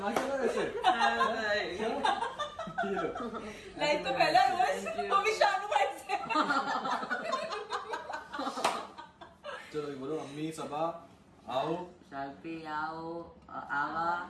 क्या वैसे? लाइफ तो पहला रोज वो भी शानू भाई से। चलो बोलो, अम्मी सबा आओ, शाल्पी आओ, आवा,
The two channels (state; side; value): identical; both; correlation 1.00